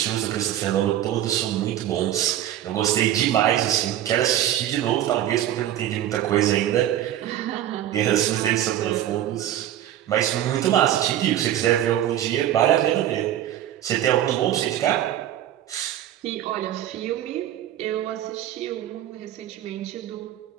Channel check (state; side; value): quieter; left; 11.9 dB